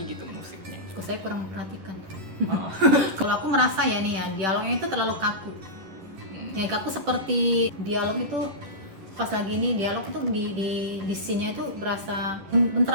gitu musiknya. Kok saya kurang perhatikan. Oh. Kalau aku merasa ya nih ya, dialognya itu terlalu kaku. Yang kaku seperti dialog itu pas lagi ini dialog itu di scene-nya itu berasa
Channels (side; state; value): left; late; 11 ms